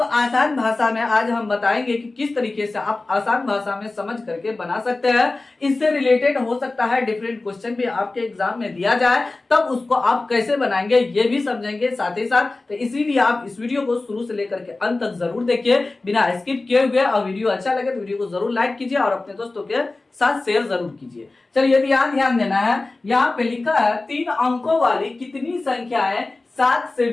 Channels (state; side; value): quieter; right; 3.3 dB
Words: आसान भाषा में आज हम बताएंगे कि किस तरीके से आप आसान भाषा में समझ करके बना सकते हैं। इससे रिलेटेड हो सकता है डिफरेंट क्वेश्चन भी आपके एग्जाम में दिया जाए, तब उसको आप कैसे बनाएंगे ये भी समझेंगे साथ ही साथ। तो इसीलिए आप इस वीडियो को शुरू से लेकर के अंत तक जरूर देखिए बिना स्किप किए हुए। और वीडियो अच्छा लगे तो वीडियो को जरूर लाइक कीजिए और अपने दोस्तों के साथ शेयर जरूर कीजिए। चलिए, ध्यान देना है। यहाँ पे लिखा है 3 अंकों वाली कितनी संख्याएं 7 से